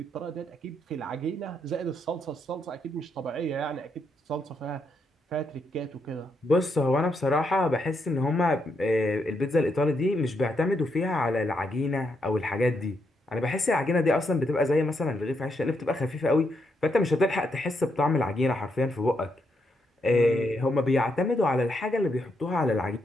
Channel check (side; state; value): both; normal; correlation 0.79